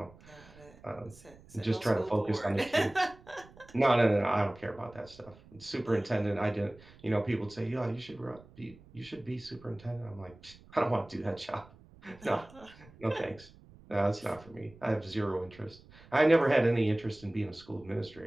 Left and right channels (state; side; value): noise; right; rumble, 23 dB below the sound